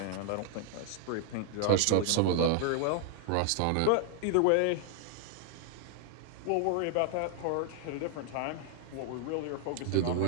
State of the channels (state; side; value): different; both; correlation 0.00